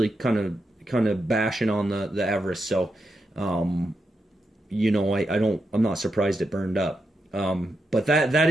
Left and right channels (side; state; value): both; normal; correlation 0.85